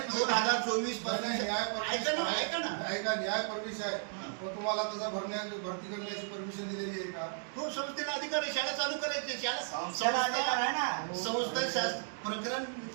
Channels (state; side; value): silent; left; digital silence